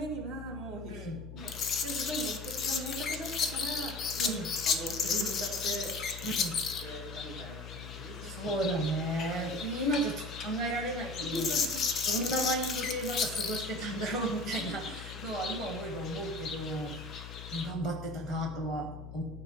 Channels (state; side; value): noise; left; hum, 11 dB below the sound